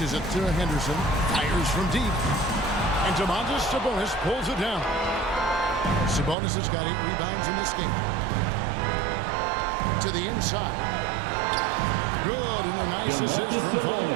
it to Henderson. Fires from deep. And Domantas Sabonis pulls it down. Sabonis has got 8 rebounds in this game. To the inside. Good, and a nice assist from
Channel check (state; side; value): drops out; left; at 6.4 s